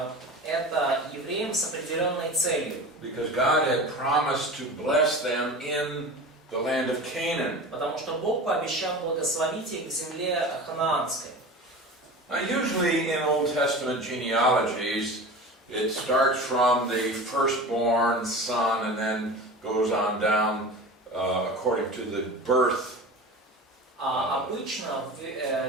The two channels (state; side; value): normal; both; correlation 0.33